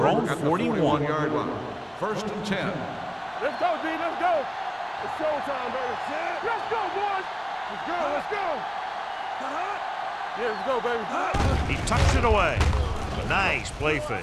over own at the 41-yard line. 1st and 10. Let's go, D. Let's go. It's showtime, baby. Let's go, boys. Let's go. Let's go. Yeah, let's go, baby. He tucks it away. Nice play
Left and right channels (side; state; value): both; identical; correlation 1.00